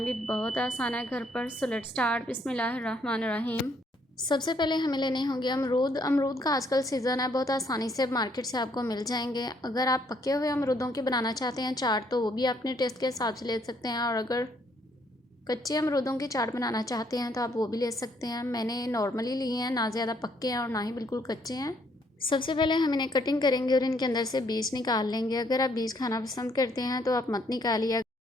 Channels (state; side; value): normal; both; correlation 0.68